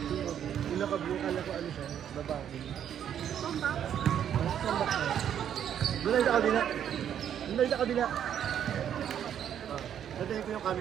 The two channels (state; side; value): quieter; left; 9.5 dB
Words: Yung naka-blue, kala ko ano siya, babae. Tombak. Doon tayo sa kabila. Doon tayo sa kabila. Natayin ko yung